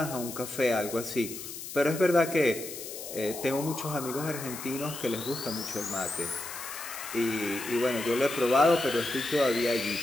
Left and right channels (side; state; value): left; noise; hiss, 10 dB below the sound